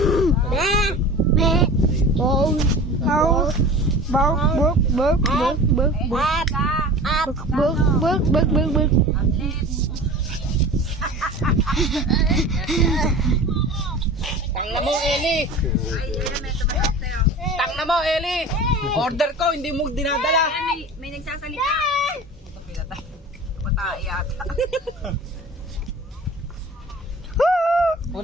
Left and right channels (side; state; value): both; normal; correlation 0.38